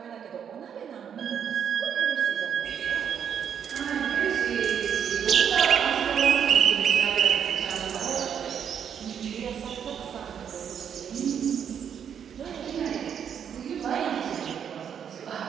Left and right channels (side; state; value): left; quieter; 8.2 dB